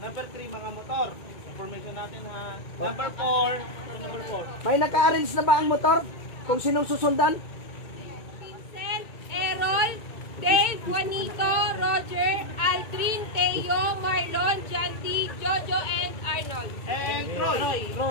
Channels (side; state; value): right; late; 2.2 ms